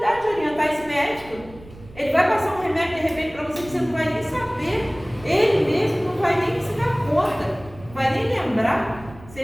orientar esse médico. Ele vai passar um remédio de repente para você que você não vai nem saber. Ele mesmo não vai nem se dar conta, não vai nem lembrar. Se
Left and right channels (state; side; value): noise; right; rumble, 19 dB below the sound